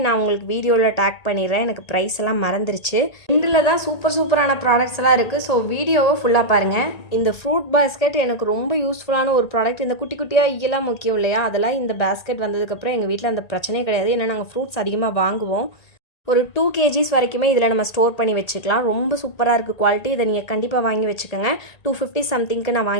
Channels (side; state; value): right; late; 1.8 ms